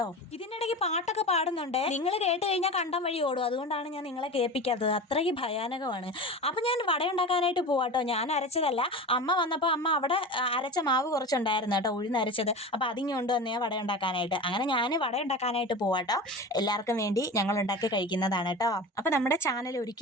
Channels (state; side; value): normal; both; correlation 0.30